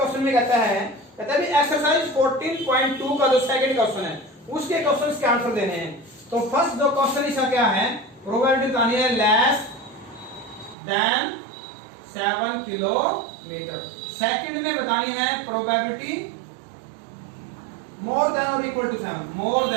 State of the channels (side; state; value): left; drops out; at 10.8 s